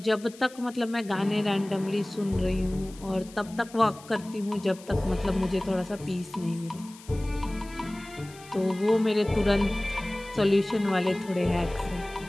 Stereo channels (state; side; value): noise; left; hiss, 21 dB below the sound